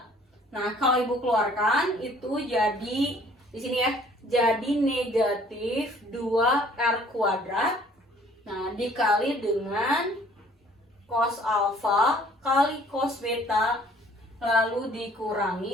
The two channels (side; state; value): both; normal; correlation 0.56